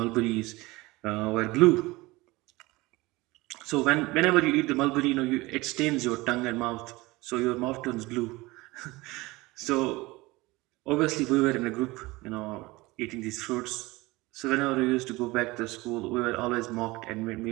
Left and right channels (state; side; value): quieter; left; 21.4 dB